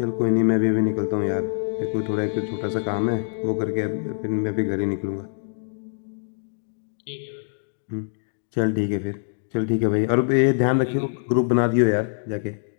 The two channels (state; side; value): silent; right; digital silence